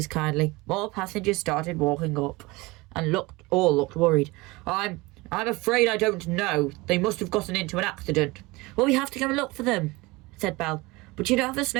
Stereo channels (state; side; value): quieter; left; 22.8 dB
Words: Kindly. More passengers started walking up and all looked worried. I'm afraid I don't know. They must have gotten into an accident. Well, we have to go and look for them, said Belle. But you don't have a